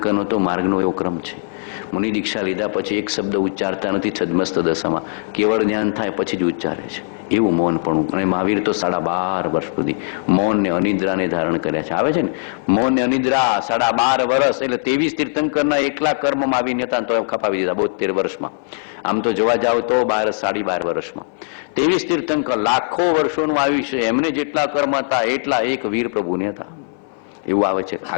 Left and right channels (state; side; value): silent; right; 60 dB below the other